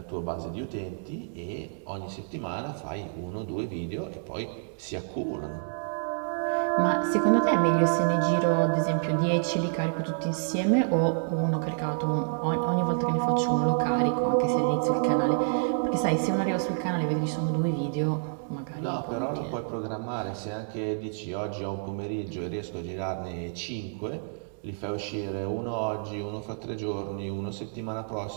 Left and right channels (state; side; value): silent; left; digital silence